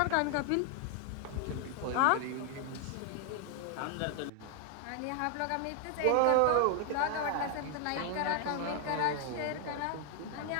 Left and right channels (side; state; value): both; different; correlation 0.00